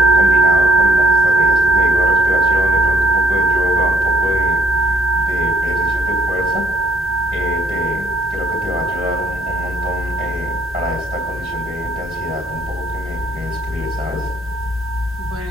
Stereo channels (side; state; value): both; normal; correlation 0.66